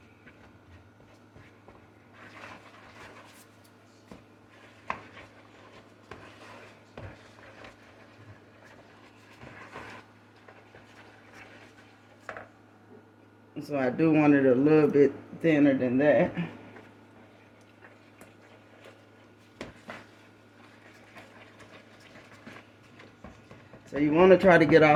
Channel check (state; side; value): identical; both; correlation 1.00